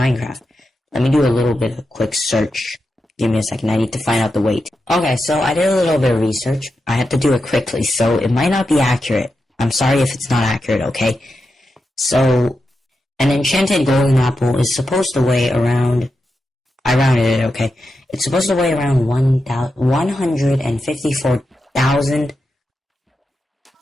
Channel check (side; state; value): both; normal; correlation 0.88